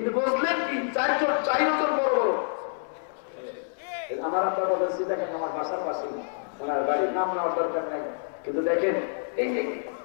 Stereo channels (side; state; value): right; silent; digital silence